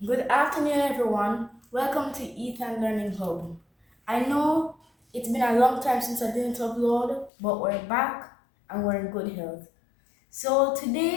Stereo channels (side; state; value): right; drops out; at 7.3 s